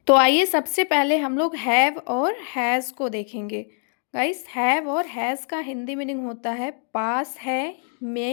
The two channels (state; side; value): silent; right; 57 dB below the other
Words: तो आइए सबसे पहले हम लोग हैव और हैज को देखेंगे। गाइस, हैव और हैज का हिंदी मीनिंग होता है पास है,